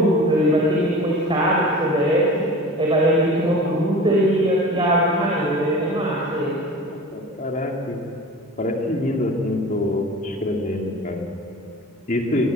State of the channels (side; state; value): both; normal; correlation 0.37